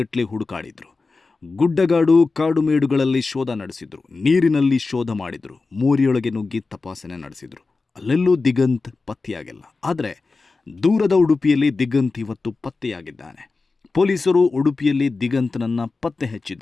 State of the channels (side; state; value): right; quieter; 3.9 dB